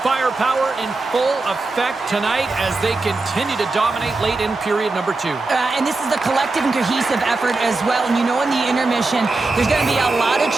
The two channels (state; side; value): quieter; left; 3.4 dB